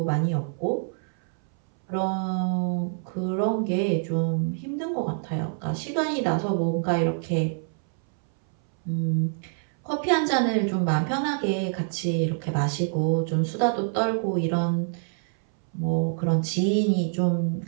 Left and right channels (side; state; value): left; silent; 61 dB below the other